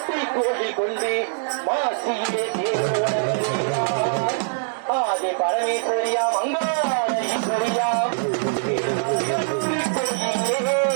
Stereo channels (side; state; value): left; silent; digital silence